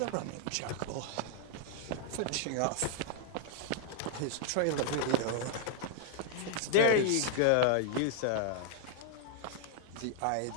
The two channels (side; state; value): both; different; correlation -0.01